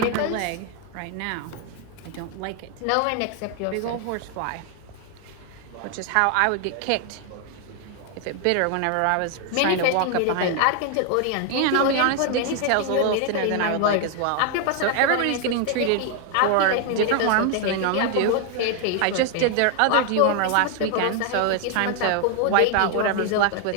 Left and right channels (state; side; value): different; both; correlation 0.00